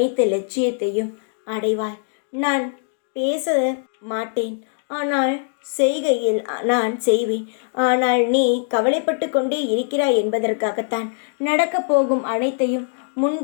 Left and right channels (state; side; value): silent; right; digital silence